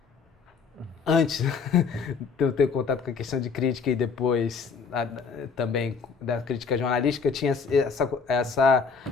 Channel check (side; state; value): right; quieter; 5.4 dB